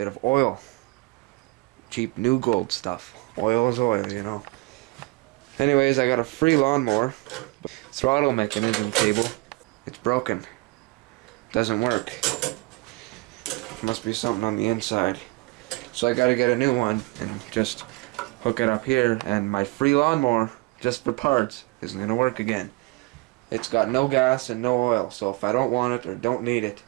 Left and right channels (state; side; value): quieter; left; 25.3 dB